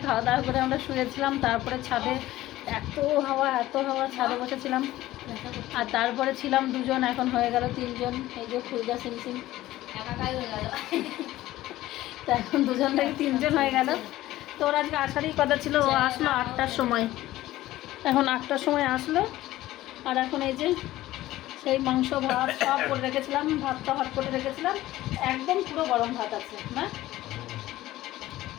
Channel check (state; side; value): quieter; right; 15.8 dB